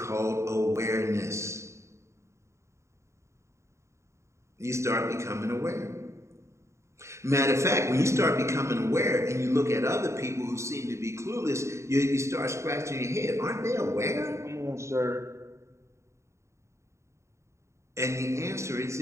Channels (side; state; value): left; late; 0.14 ms